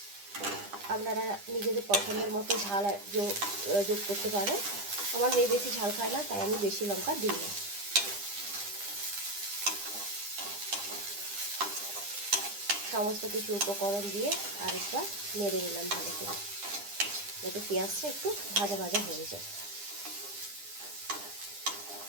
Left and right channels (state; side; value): late; left; 9.9 ms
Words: আপনারা নিজেদের পছন্দের মতো ঝাল যোগ করতে পারেন। আমার মেয়ে বেশি ঝাল খায় না, তাই আমি বেশি লঙ্কা দিই না। সমস্ত কিছু উপকরণ দিয়ে আরেকবার নেড়ে নিলাম ভালো করে, যাতে পেঁয়াজটা একটু ভাজা ভাজা হয়ে যায়।